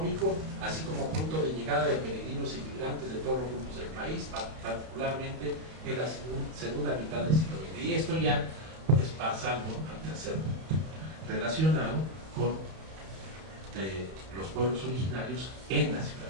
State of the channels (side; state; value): left; late; 31 ms